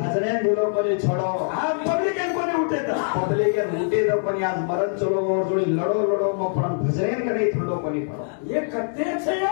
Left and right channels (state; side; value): silent; right; digital silence